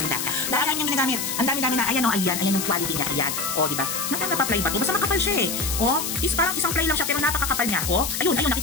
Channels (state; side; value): noise; left; hiss, 3 dB below the sound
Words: Dahil yung ginagamit, ang dami-dami na, ayan yung quality niya, ayan. O, di ba? Napapa-play ba to? Basta makapal siya eh. O, parang isang play lang siya pero napakakapal niya. O, ayun,